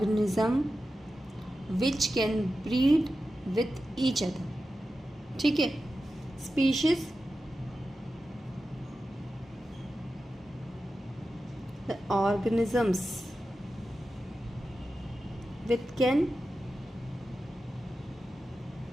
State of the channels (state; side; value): normal; both; correlation 0.92